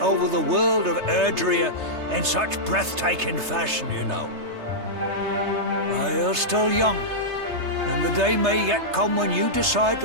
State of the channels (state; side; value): late; left; 3.3 ms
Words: the world of Erdrea in such breathtaking fashion, you know. You're still young, and the day may yet come when you decide